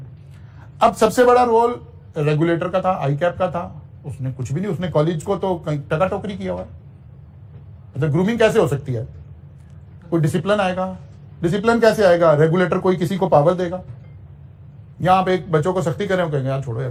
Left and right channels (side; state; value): both; identical; correlation 1.00